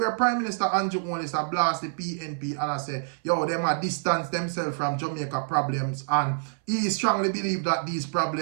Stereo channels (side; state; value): left; silent; 60 dB below the other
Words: Prime Minister Andrew Holness blast the PNP and I say, yo, them are distance themselves from Jamaica problems, and he strongly believe that these